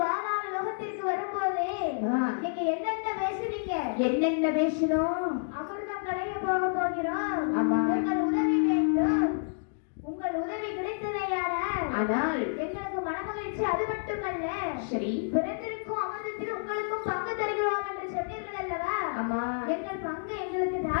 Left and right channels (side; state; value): right; silent; digital silence